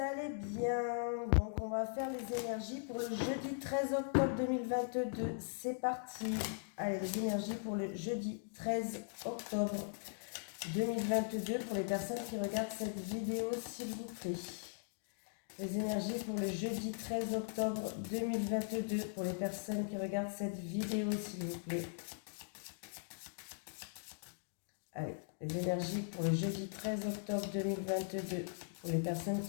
bien. Donc on va faire les énergies pour le jeudi 13 octobre 2022. C'est parti. Allez, les énergies pour le jeudi 13 octobre 2022 pour les personnes qui regardent cette vidéo, s'il vous plaît. Les énergies pour le jeudi 13 octobre 2022 pour les personnes qui regardent cette vidéo, s'il vous plaît. Allez, les énergies pour le jeudi 13 octobre 2022 pour les personnes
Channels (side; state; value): right; silent; digital silence